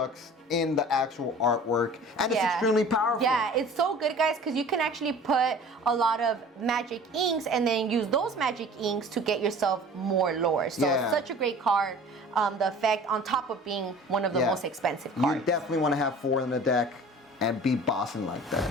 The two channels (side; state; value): both; normal; correlation 0.44